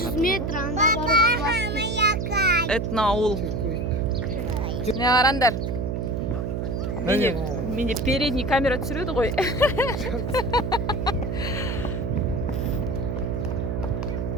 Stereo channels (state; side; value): noise; right; hum, 2 dB below the sound